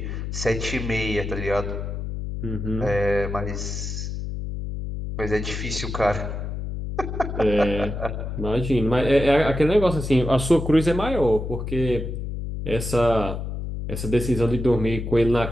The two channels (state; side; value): noise; left; hum, 5 dB below the sound